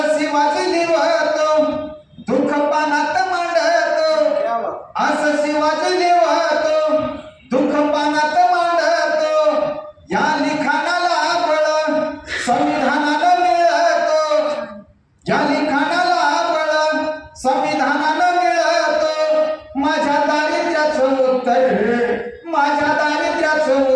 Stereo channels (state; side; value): identical; both; correlation 1.00